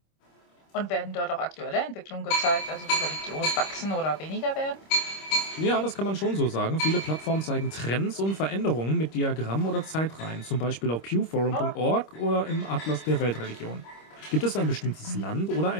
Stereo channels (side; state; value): right; late; 26 ms